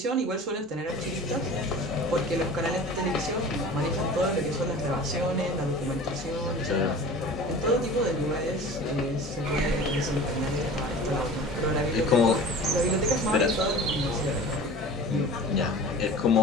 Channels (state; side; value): normal; both; correlation 0.40